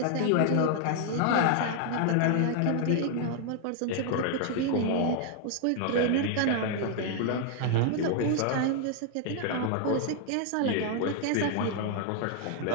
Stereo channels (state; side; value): different; both; correlation 0.00